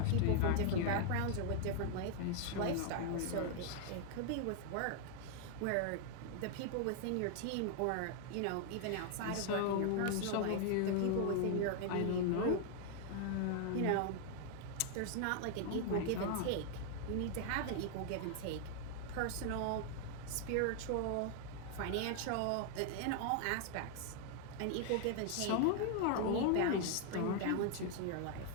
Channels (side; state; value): both; different; correlation 0.00